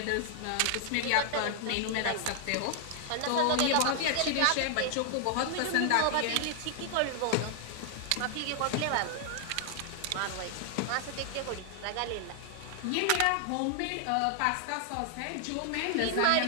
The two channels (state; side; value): different; both; correlation 0.00